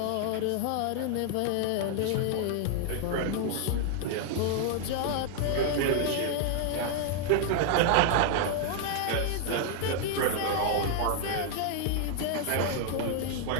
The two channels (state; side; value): different; both; correlation 0.00